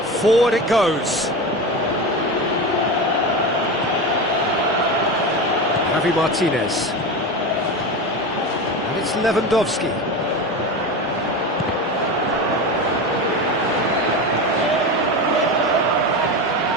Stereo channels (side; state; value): both; normal; correlation 0.23